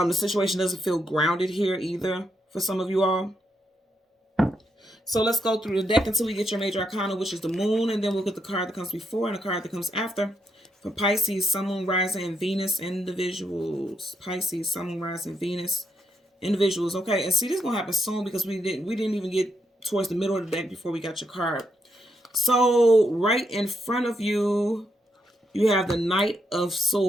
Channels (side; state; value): both; normal; correlation 0.79